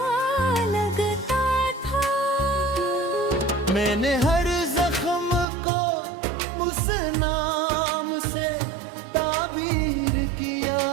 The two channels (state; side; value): drops out; left; at 5.5 s